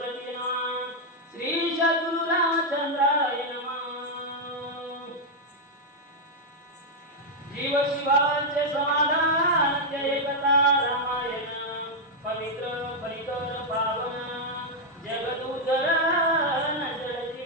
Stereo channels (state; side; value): normal; both; correlation -0.01